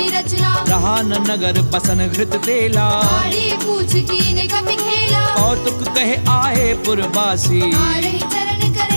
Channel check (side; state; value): both; inverted; correlation -1.00